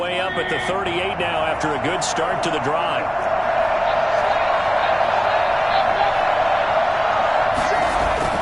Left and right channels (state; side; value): identical; both; correlation 1.00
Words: up at the 38 now after a good start to the drive.